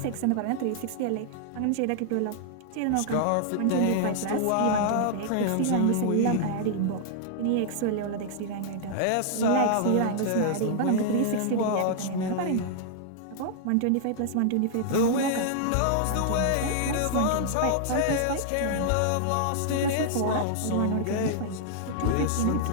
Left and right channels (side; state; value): both; different; correlation -0.01